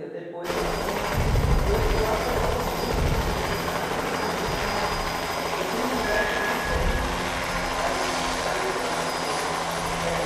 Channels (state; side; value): identical; both; correlation 1.00